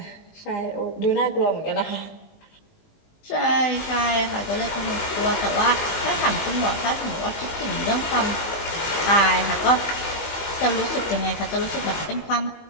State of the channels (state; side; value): late; right; 19 ms